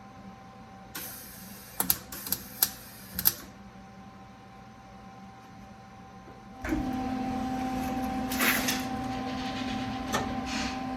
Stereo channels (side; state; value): both; identical; correlation 1.00